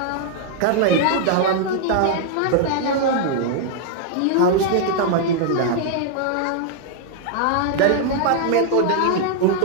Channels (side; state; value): both; different; correlation -0.01